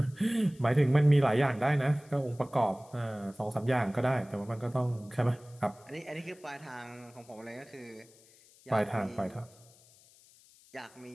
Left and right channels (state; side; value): noise; left; hiss, 27 dB below the sound